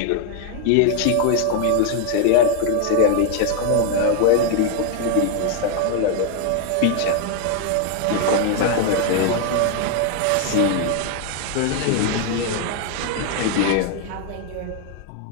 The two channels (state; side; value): different; both; correlation 0.01